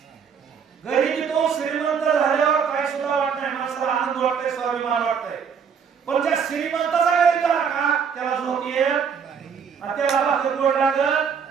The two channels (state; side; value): quieter; left; 6.8 dB